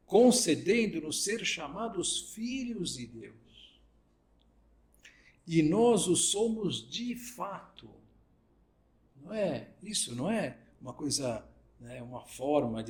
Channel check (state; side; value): identical; both; correlation 1.00